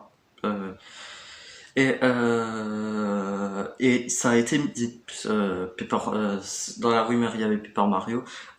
Euh, et ça a été dit, dans la rumeur il y avait Paper Mario.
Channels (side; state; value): both; identical; correlation 1.00